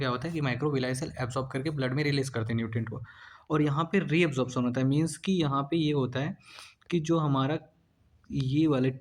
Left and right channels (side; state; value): both; identical; correlation 1.00